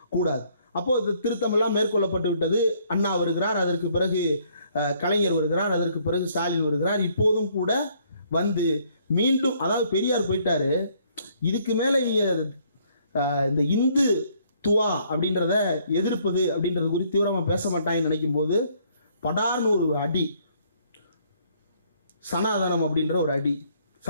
கூடாது. அப்போ இது திருத்தம் எல்லாம் மேற்கொள்ளப்பட்டு விட்டது. அண்ணா வருகிறார், அதற்கு பிறகு கலைஞர் வருகிறார், அதற்கு பிறகு ஸ்டாலின் வருகிறார். இப்போதும் கூட வந்து மீண்டும், அதாவது பெரியார் போயிட்டாரு, இதுக்கு மேல இந்த இந்து துவா அப்படின்றத எதிர்ப்பது அப்படின்றது குறித்து தீவிரமா பேச மாட்டாங்கன்னு நினைக்கும் போது படார்னு ஒரு அடி, சனாதனம் அப்படின்ற ஒரு அடி,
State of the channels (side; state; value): both; inverted; correlation -0.65